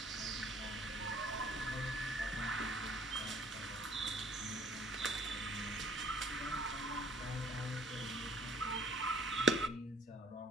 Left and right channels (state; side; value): normal; both; correlation 0.56